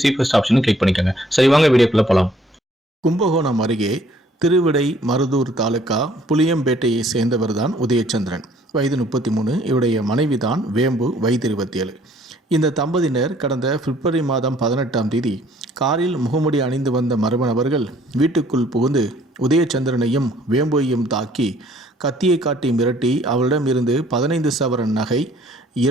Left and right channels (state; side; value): normal; both; correlation 0.60